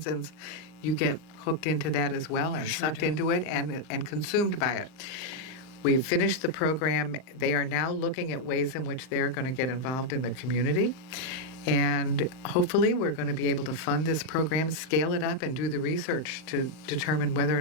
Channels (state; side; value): late; right; 38 ms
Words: you get hooked into that as well and sucked into it and consumed by it. We've finished the program. They are now looking at ways in which they're going to get involved in the community. And hopefully we're going to be able to fund this program, scale it up, and do the research to determine whether